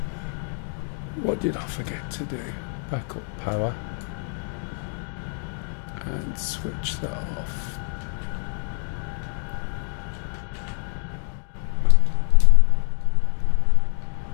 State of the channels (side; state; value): right; silent; 55 dB below the other